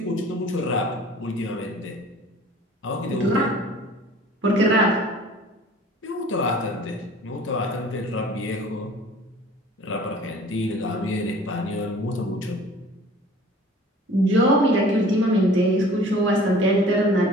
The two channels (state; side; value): normal; both; correlation 0.48